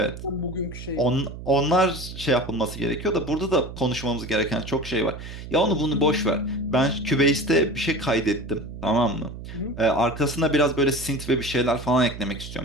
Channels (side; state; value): right; noise; hum, 11 dB below the sound